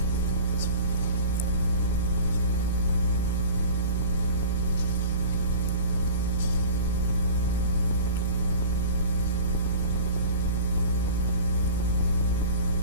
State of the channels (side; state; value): both; inverted; correlation -0.38